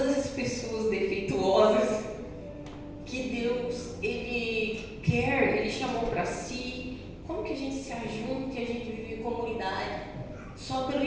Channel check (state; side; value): identical; both; correlation 1.00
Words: essas pessoas defeituosas que Deus, Ele quer, Ele chamou para si. Como que a gente se ajunta e a gente vive em comunidade? Só pelo